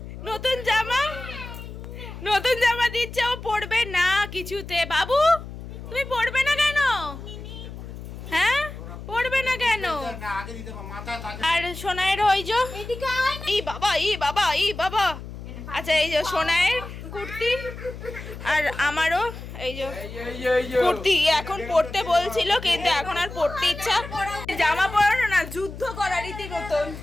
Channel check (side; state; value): left; noise; hum, 11 dB below the sound